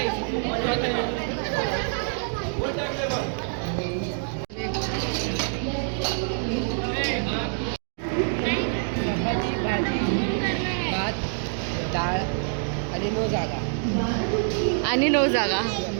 भात, डाळ आणि 9 जागा. आणि 9 जागा.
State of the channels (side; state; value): left; silent; 61 dB below the other